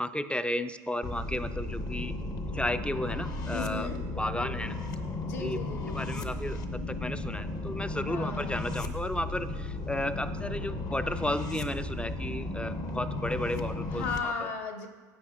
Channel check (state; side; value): normal; both; correlation 0.69